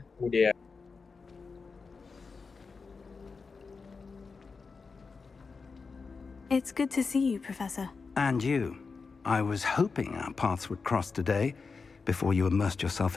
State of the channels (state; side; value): quieter; right; 4.7 dB